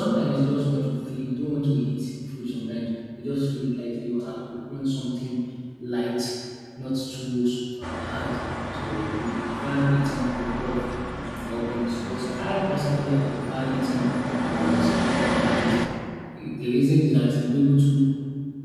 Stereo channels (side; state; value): both; identical; correlation 1.00